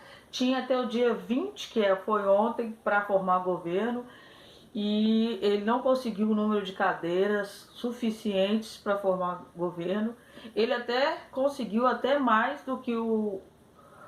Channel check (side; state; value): both; identical; correlation 1.00